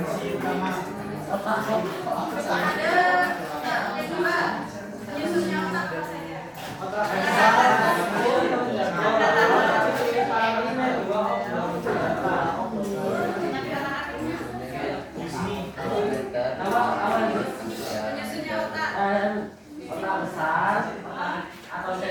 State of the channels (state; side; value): identical; both; correlation 1.00